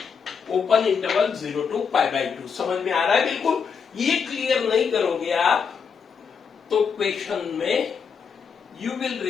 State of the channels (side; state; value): right; quieter; 6.2 dB